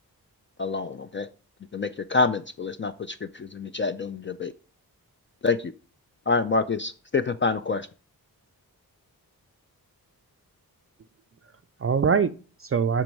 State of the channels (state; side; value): normal; both; correlation -0.11